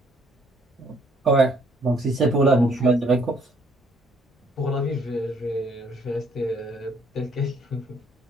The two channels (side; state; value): both; normal; correlation 0.65